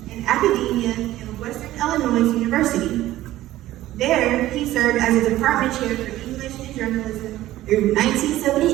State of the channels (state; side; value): quieter; left; 15.0 dB